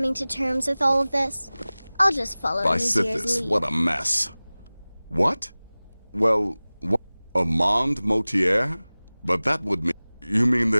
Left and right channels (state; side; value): inverted; both; correlation -0.99